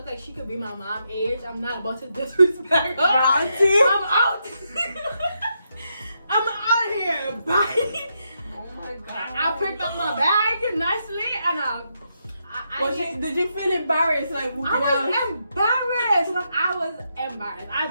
like she could be my mom age. I'm not about to disrespect her. Auntie? I'm out. I'm out here. Bye. Oh my God. I picked up my bag nicely and Did you feel embarrassed? Like, I was embarrassed. Like, I was embarrassed.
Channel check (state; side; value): inverted; both; correlation -0.81